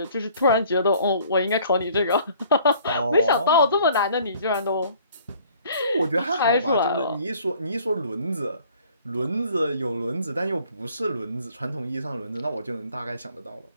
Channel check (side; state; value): both; inverted; correlation -0.55